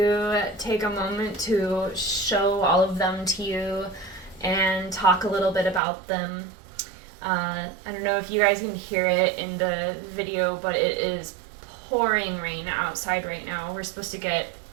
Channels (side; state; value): left; drops out; at 5.8 s